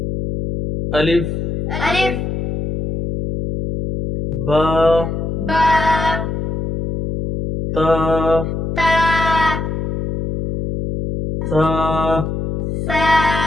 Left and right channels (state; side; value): noise; left; hum, 3 dB below the sound